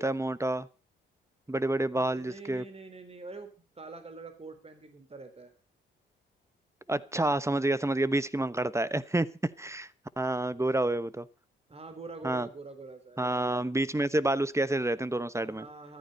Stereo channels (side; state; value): both; normal; correlation 0.79